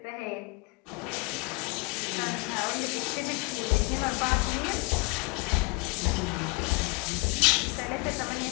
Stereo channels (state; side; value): quieter; right; 26.1 dB